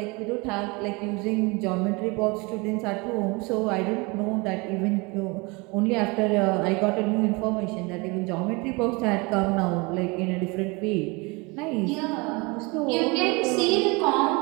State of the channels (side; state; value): left; quieter; 27.2 dB